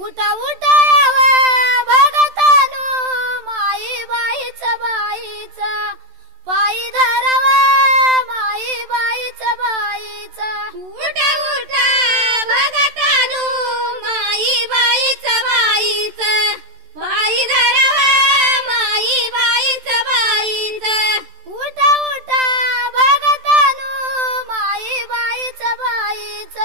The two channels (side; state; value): left; late; 14 ms